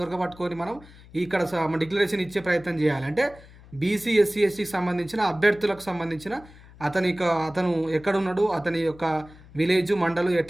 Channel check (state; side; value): noise; left; hum, 22 dB below the sound